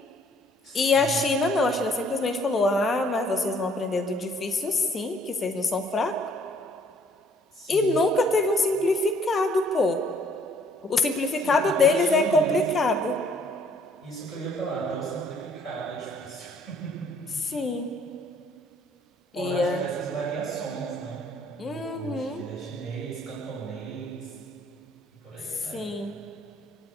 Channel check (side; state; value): both; normal; correlation 0.62